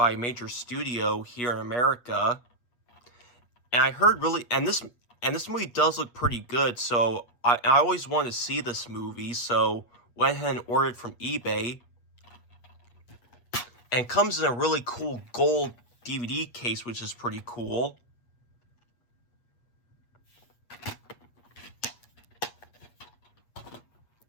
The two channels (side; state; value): right; late; 8.4 ms